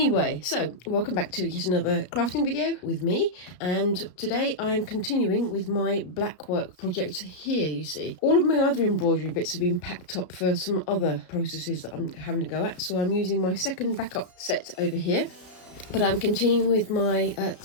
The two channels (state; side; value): late; right; 33 ms